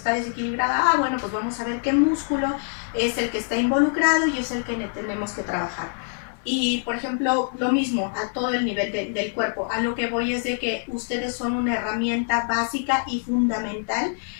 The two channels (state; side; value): silent; right; digital silence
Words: desequilibrada. Ah, bueno, pues vamos a ver qué músculo es el que está involucrado y es el que tenemos que trabajar. Y, por ejemplo, lo mismo a todo el nivel del cuerpo. A lo que voy es de que ustedes son una herramienta básica y fundamental